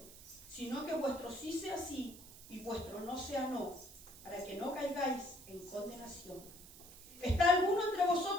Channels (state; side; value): noise; right; hiss, 17 dB below the sound